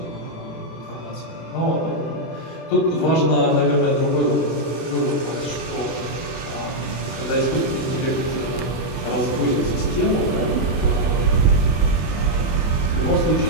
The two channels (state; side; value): late; right; 24 ms